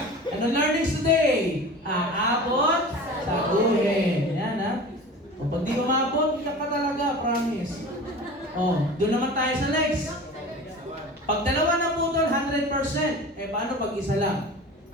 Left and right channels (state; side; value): normal; both; correlation 0.37